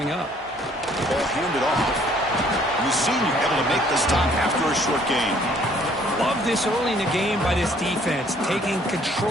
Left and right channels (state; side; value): normal; both; correlation 0.61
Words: up. Ball handed off. Mussini able to make the stop after a short gain. Love this early in the game by this defense, taking